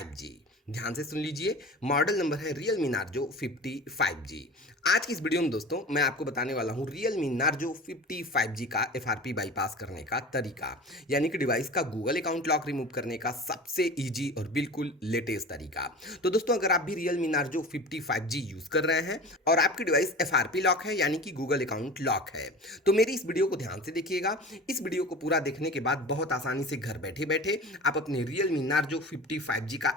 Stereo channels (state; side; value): normal; both; correlation 0.35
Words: ध्यान से सुन लीजिए, मॉडल नंबर है Realme नार्जो 55G। आज की इस वीडियो में दोस्तों मैं आपको बताने वाला हूं Realme नार्जो 55G का FRP बाईपास करने का तरीका, यानी कि डिवाइस का गूगल अकाउंट लॉक रिमूव करने का सबसे इजी और बिल्कुल लेटेस्ट तरीका। तो दोस्तों अगर आप भी Realme नार्जो 55G यूज कर रहे हैं और आपकी डिवाइस FRP लॉक है यानी कि गूगल अकाउंट लॉक है, तो मेरी इस वीडियो को ध्यान से देखिएगा। इस वीडियो को पूरा देखने के बाद बहुत आसानी से घर बैठे बैठे आप अपने Realme नार्जो 55G का